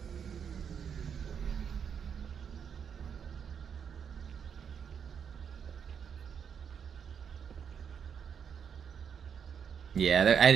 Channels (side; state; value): left; quieter; 7.4 dB